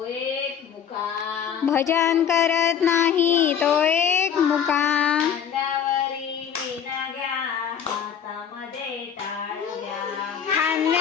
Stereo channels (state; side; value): quieter; right; 8.2 dB